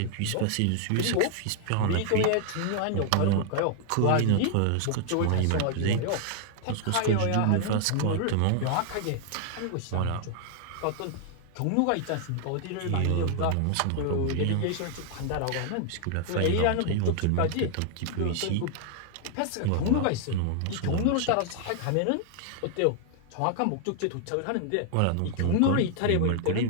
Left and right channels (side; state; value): both; different; correlation 0.00